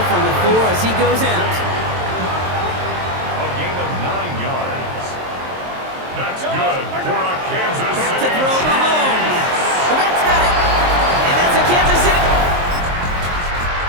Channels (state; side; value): late; left; 23 ms